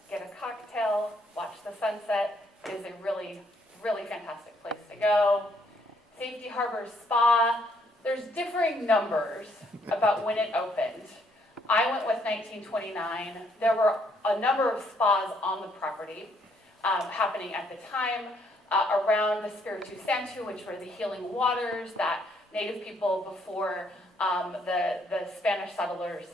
get a cocktail, watch the sunset. It is a really, really fantastic place to go. Safety Harbor Spa. There's differing numbers about when it opened. I went with 1929. There were a number of spas on the property happening at the time around the Spiritu Santo, which were the healing waters that Native people before the Spanish settlers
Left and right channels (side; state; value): both; normal; correlation 0.69